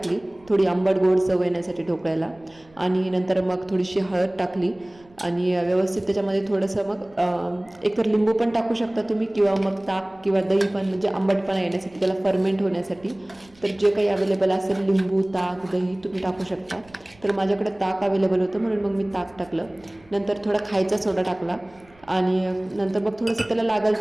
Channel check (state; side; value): noise; right; rumble, 28 dB below the sound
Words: थोडी आंबट गोड चव येण्यासाठी ढोकळ्याला, आणि नंतर मग थोडीशी हळद टाकली आणि व्यवस्थित त्याच्यामध्ये थोडंसं मग एकतर लिंबू पण टाकू शकता तुम्ही, किंवा मग ताक किंवा दही पण, म्हणजे आंबटपणा येण्यासाठी, त्याला फर्मेंट होण्यासाठी. तर जे काही अवेलेबल असेल, लिंबू, ताक, दही तुम्ही टाकू शकता. तर माझ्याकडे ताक अवेलेबल होतं म्हणून मग मी ताक टाकलं. नंतर थोडा खायचा सोडा टाकला आणि नंतर मग थोडंसं त्याला